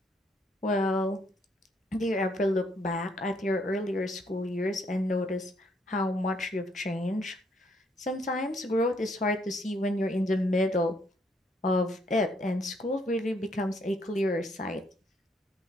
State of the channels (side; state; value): both; normal; correlation 0.70